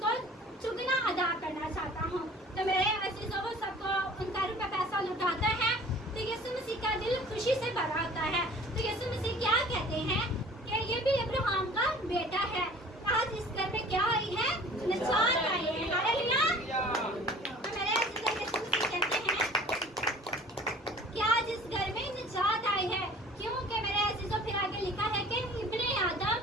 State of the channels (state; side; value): normal; both; correlation 0.48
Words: चुगना अदा करना चाहता हूँ। तो मेरे अजीजों वो सबको उनका रुपया पैसा लुटाता है तो यीशु मसीह का दिल खुशी से भरा होता है। तो यीशु मसीह क्या कहते हैं कि ये भी अब्राहम का बेटा है। आज इस घर में क्या आई है? निजात आई है। हालेलुया। तो मेरे अजीजों यीशु मसीह कहते हैं कि आज इस घर में निजात आई है। क्योंकि मेरे अजीजों फिर आगे लिखा है कि इब्ने